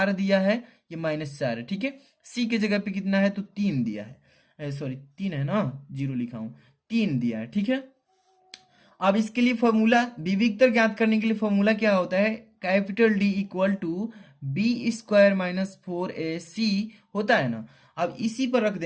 दिया है, ये -4 है। ठीक है, c के जगह पे कितना है तो 3 दिया है, सॉरी 3 है ना, 0 लिखा हूं, 3 दिया है। ठीक है, अब इसके लिए फॉर्मूला विविक्तर ज्ञात करने के लिए फॉर्मूला क्या होता है, capital D equal to b² - 4ac होता है ना। अब इसी पर रख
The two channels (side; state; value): both; identical; correlation 1.00